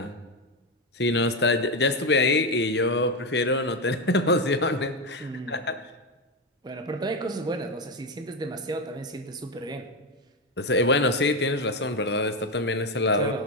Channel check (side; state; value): both; normal; correlation 0.11